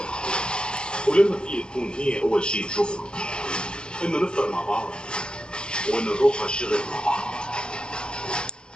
ولما فيه تكون هي اول شيء تشوفه، انه نفطر مع بعض وانه نروح على الشغل مع بعض،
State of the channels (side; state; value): right; late; 0.048 ms